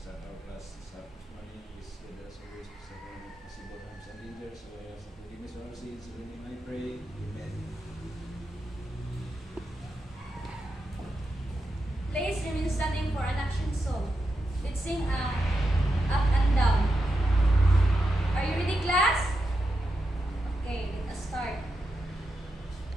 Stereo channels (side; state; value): both; normal; correlation 0.87